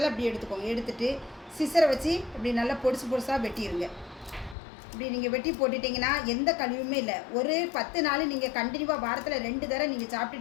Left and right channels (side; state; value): right; drops out; at 4.5 s